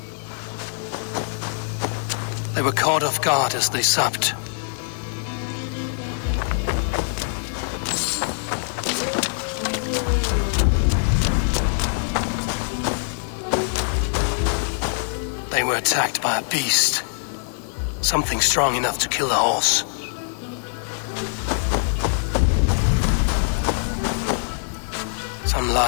They were caught off guard as they supped. They were attacked by a beast. Something strong enough to kill a horse. Some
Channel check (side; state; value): right; silent; digital silence